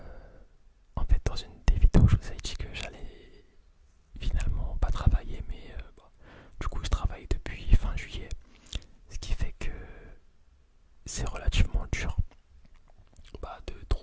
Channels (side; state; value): both; identical; correlation 1.00